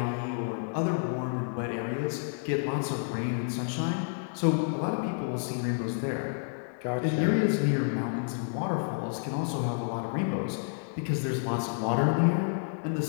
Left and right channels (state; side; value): silent; right; 58 dB below the other